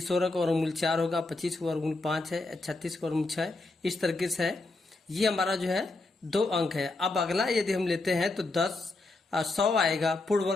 का वर्गमूल 4 होगा, 25 का वर्गमूल 5 है, 36 का वर्गमूल 6। इस तरीके से है। ये हमारा जो है 2 अंक है। अब अगला यदि हम लेते हैं तो 100 आएगा, पूर्ण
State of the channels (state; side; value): quieter; right; 3.2 dB